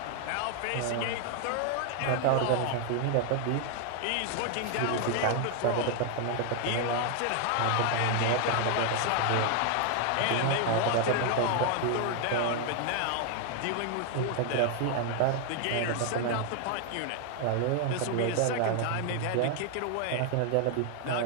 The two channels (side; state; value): both; different; correlation 0.00